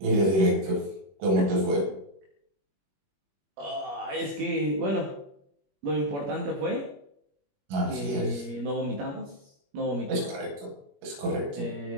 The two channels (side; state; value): left; late; 21 ms